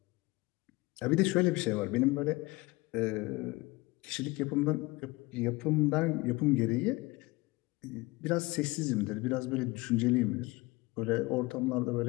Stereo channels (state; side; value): quieter; right; 22.7 dB